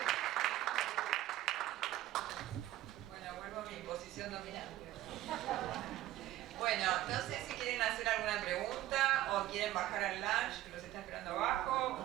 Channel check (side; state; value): left; quieter; 14.8 dB